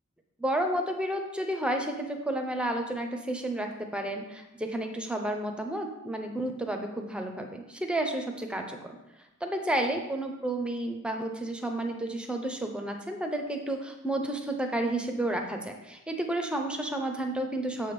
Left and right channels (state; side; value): normal; both; correlation 0.63